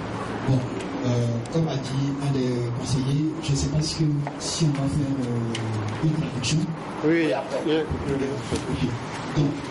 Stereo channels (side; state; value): both; identical; correlation 1.00